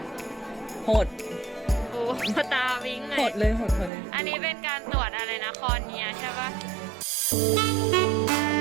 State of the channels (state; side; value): drops out; left; at 3.9 s